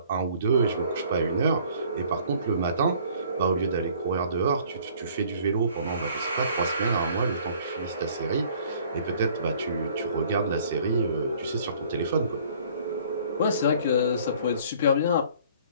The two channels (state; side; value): inverted; both; correlation -0.55